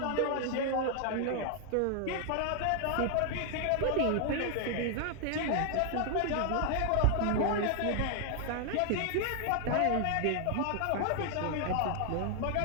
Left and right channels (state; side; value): different; both; correlation 0.00